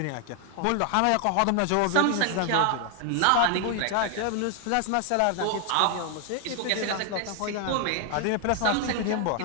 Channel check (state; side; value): different; both; correlation 0.00